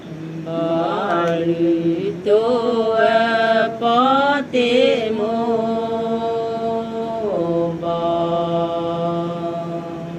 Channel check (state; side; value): identical; both; correlation 1.00